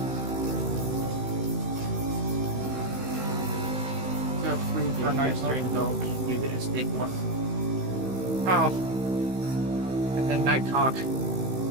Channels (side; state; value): left; late; 16 ms